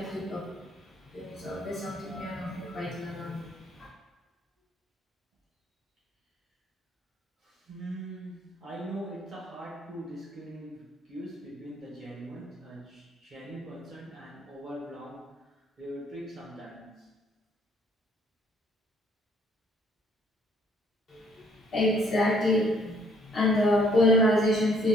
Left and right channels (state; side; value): normal; both; correlation 0.62